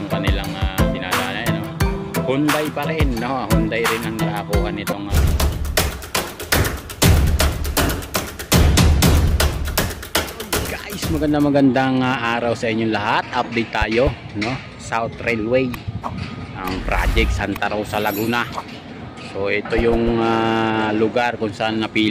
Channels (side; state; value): both; identical; correlation 1.00